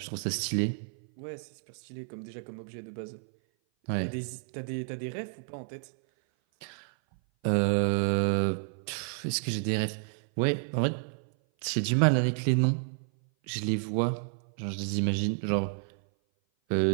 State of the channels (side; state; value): left; silent; 56 dB below the other